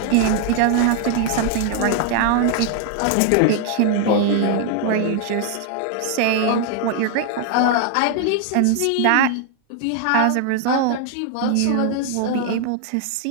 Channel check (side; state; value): both; different; correlation 0.00